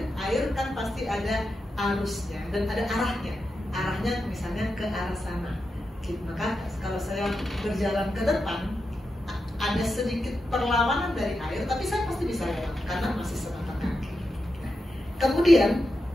Air kan pasti ada arusnya dan ada arahnya. Arahnya misalnya ke arah sana, sedikit. Maka kalau saya berjalan ke depan, ada sedikit perlawanan dari air, tapi saya pasti bisa lewat karena masih sebatas kaki. Kemudian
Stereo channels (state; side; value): normal; both; correlation 0.88